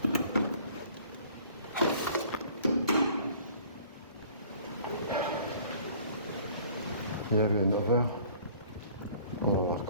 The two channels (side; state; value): both; inverted; correlation -0.53